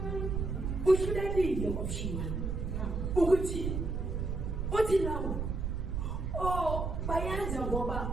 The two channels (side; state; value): right; noise; rumble, 2 dB below the sound